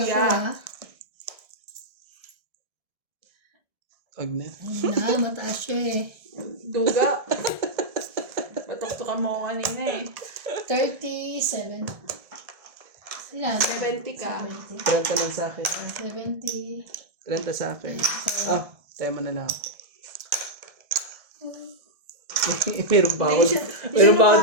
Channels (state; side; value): late; left; 1.7 ms